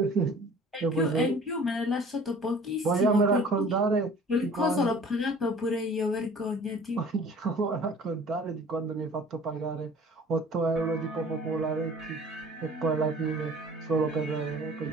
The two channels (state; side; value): normal; both; correlation 0.48